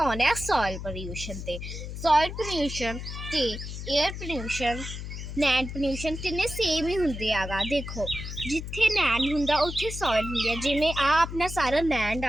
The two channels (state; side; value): noise; left; hum, 8 dB below the sound